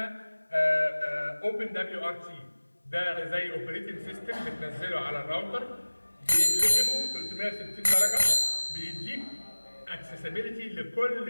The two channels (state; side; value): inverted; both; correlation -1.00